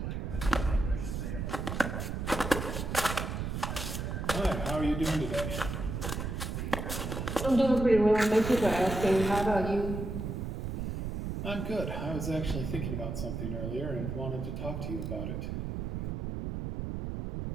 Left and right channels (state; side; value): noise; right; rumble, 3 dB below the sound